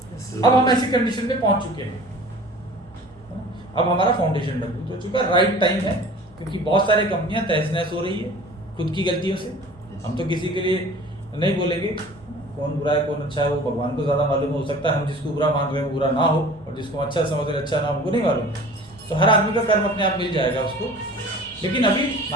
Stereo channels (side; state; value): both; normal; correlation 0.44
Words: अब हम ऐसी कंडीशन में पहुंच चुके हैं, अब हमारा फाउंडेशन मजबूत हो चुका है। राइट टाइम है, क्योंकि बहुत सारी कंपनियां तहस नहस हो रही है खुद की गलतियों से। हम तो किसी के लिए नहीं बोलेंगे कौन बुरा है कौन अच्छा है, वो भगवान को ज्यादा मालूम। हो सकता है हम जिसको बुरा मान रहे हैं वो बुरा ना हो, और जिसको अच्छा समझ रहे अच्छा ना हो, हमको नहीं मालूम। तो हर आदमी का कर्म अपने आप मिल जाएगा उसको। लेकिन अभी